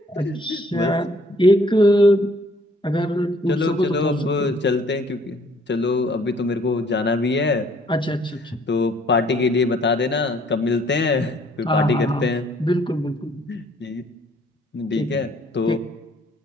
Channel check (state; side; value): normal; both; correlation 0.61